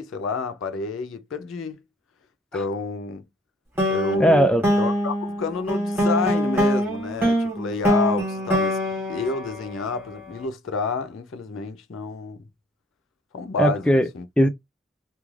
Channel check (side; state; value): both; normal; correlation 0.62